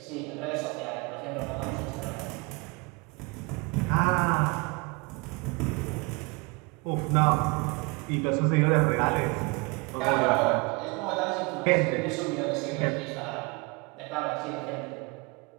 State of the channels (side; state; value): left; quieter; 28.4 dB